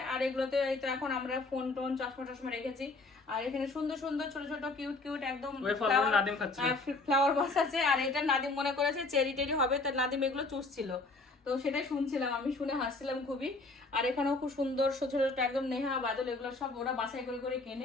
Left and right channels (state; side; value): quieter; right; 3.4 dB